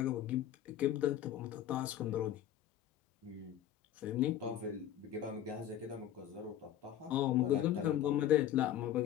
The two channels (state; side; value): quieter; right; 11.2 dB